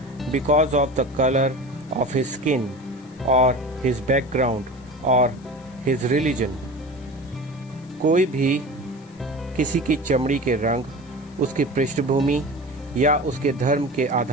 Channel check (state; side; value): noise; left; hiss, 30 dB below the sound